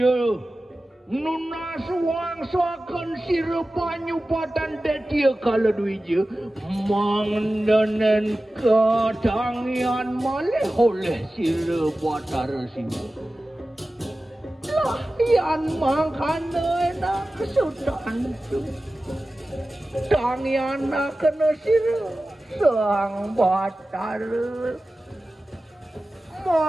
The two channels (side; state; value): both; normal; correlation 0.95